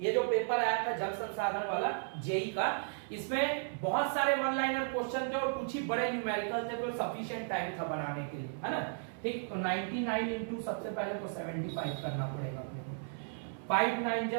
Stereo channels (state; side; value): silent; left; 55 dB below the other